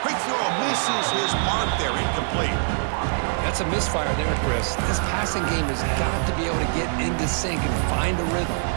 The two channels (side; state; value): left; silent; digital silence